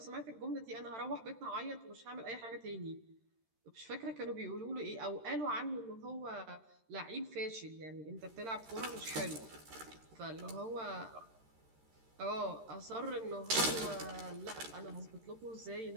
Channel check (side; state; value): left; late; 13 ms